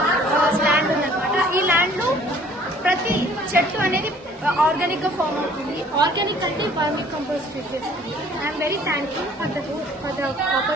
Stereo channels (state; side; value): normal; both; correlation 0.55